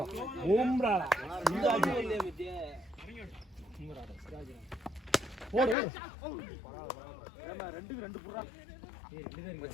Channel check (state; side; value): drops out; right; at 5.8 s